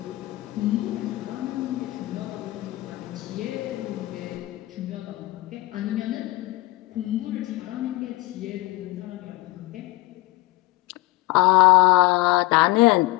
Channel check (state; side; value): quieter; right; 20.0 dB